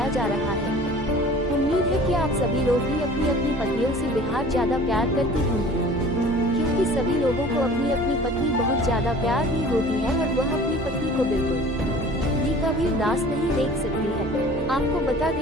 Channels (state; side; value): normal; both; correlation 0.46